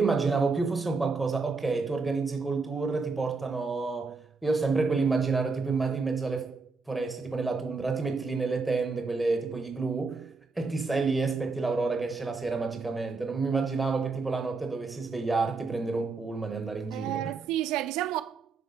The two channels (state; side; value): quieter; left; 4.2 dB